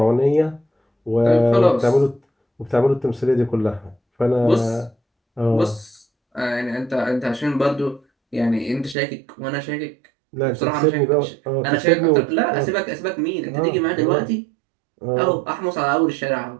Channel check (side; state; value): left; drops out; at 9.0 s